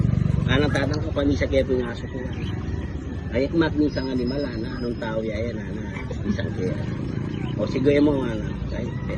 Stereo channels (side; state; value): both; identical; correlation 1.00